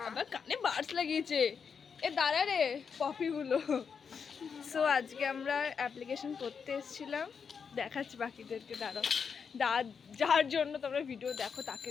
আবার কানে বাডস লাগিয়েছে। এ দাঁড়া রে পপিগুলো। সো আজকে আমরা অ্যাপ্লিকেশন করতে এসেছিলাম, দেখাচ্ছি বাকিদেরকে। দাঁড়াও, যার জন্য তোমরা ভিডিও দেখো তাকে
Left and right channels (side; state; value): right; quieter; 6.3 dB